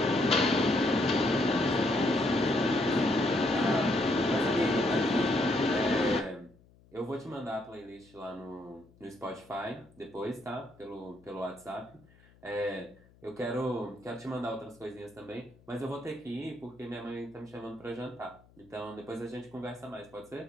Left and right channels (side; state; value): left; noise; hum, 28 dB below the sound